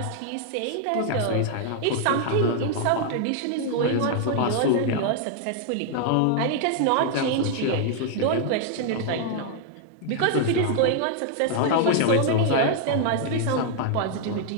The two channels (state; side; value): different; both; correlation 0.00